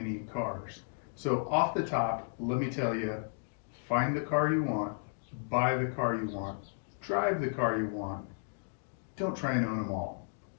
cars. So off the top, let me tell you, find the car you want, buy the car you want, drive the car you want. Don't try and own them all,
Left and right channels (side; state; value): right; silent; digital silence